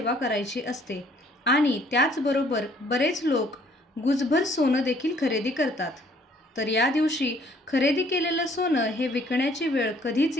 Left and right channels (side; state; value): both; normal; correlation 0.61